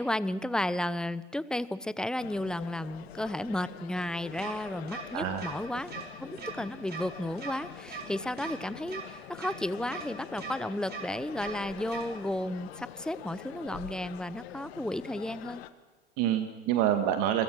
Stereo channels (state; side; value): normal; both; correlation 0.62